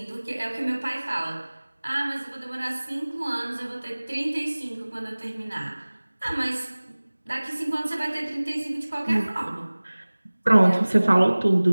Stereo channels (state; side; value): inverted; both; correlation -1.00